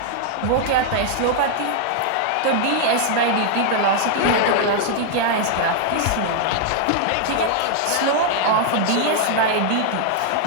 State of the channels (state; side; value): different; both; correlation 0.00